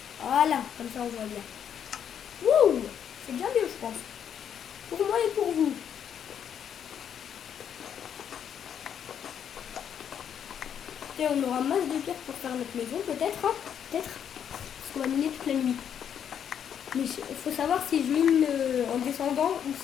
Voilà, comme ça on voit bien. Wouh, c'est bien mieux, je pense. Pour moi et pour vous. Et on aura masse de pierres pour faire notre maison, peut-être, hein, peut-être, parce qu'on va miner toute la nuit. Mais il faut savoir si je mine en descendant ou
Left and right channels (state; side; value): quieter; right; 8.6 dB